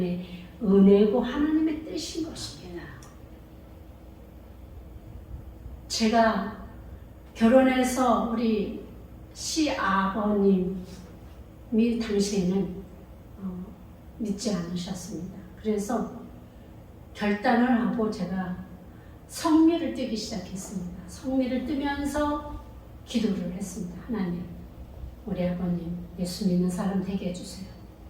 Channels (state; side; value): identical; both; correlation 1.00